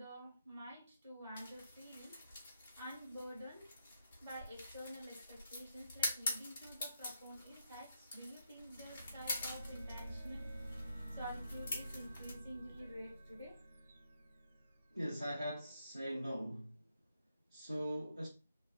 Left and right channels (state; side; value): inverted; both; correlation -0.81